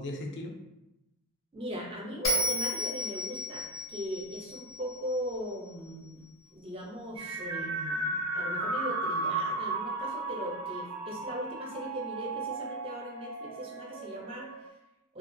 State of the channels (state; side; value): normal; both; correlation 0.09